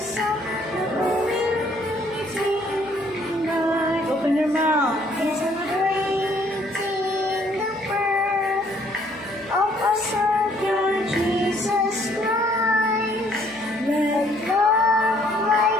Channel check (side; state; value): right; noise; hum, 25 dB below the sound